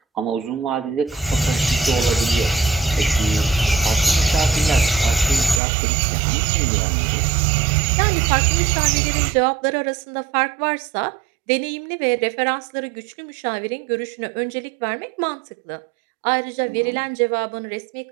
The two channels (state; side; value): drops out; left; at 5.6 s